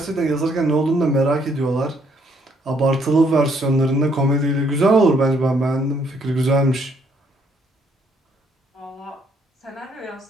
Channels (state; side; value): normal; both; correlation 0.68